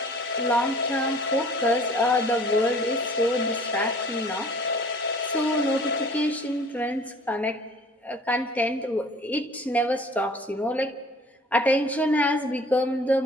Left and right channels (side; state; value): both; normal; correlation 0.49